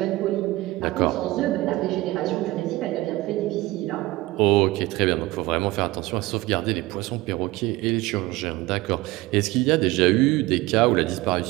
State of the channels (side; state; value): left; quieter; 19.4 dB